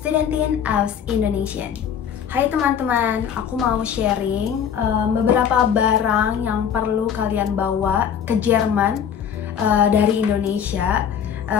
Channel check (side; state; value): right; quieter; 8.2 dB